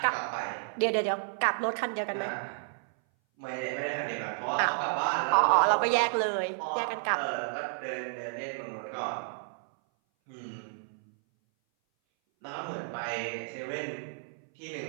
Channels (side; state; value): left; silent; 57 dB below the other